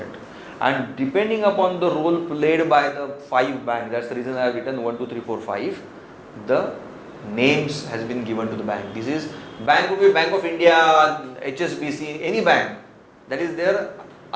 And depending upon the role played by the 5 banks, that's the reason I have written 1, 2, 3, 4, 5. The names has been given to the bank. This is bank could be Bank of India, HSBC, any bank. That is their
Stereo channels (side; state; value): both; identical; correlation 1.00